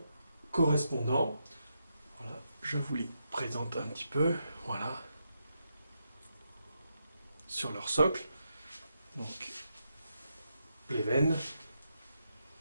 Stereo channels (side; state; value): both; inverted; correlation -0.83